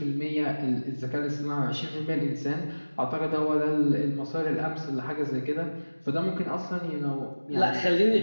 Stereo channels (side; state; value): both; inverted; correlation -1.00